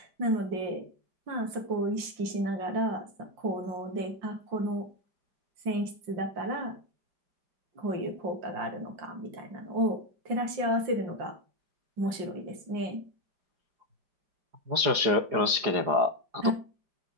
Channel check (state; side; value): late; left; 4.9 ms